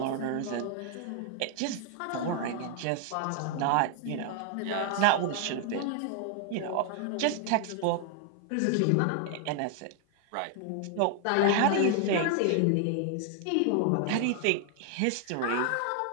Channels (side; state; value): both; different; correlation 0.00